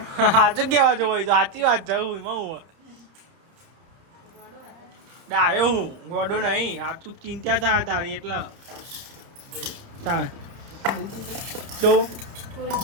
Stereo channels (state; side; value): late; left; 30 ms